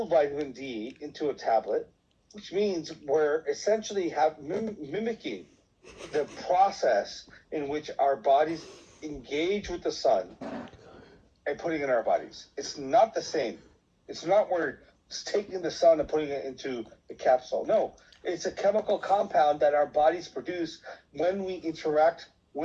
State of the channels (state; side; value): identical; both; correlation 1.00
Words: vitamin D into a tablet, which means we're essentially mimicking the process in which our bodies engage with the sun and putting it in our bodies. It's not the same. It's not we're taking the sun and putting it into the capsule. No, it's a chemical compound that our bodies produce when we interact